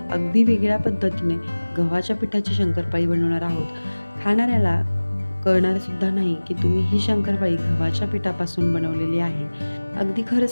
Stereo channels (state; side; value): inverted; both; correlation -1.00